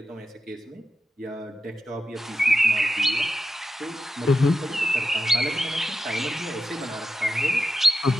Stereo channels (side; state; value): both; normal; correlation 0.89